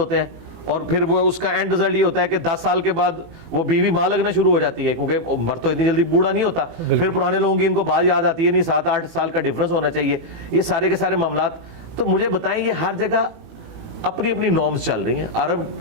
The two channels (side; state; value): left; late; 18 ms